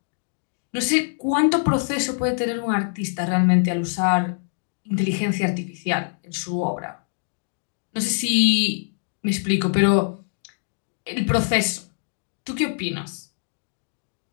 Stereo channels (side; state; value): right; silent; digital silence